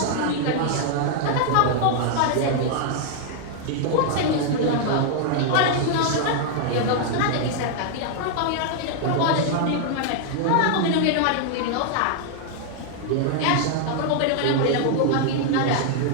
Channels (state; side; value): different; both; correlation -0.01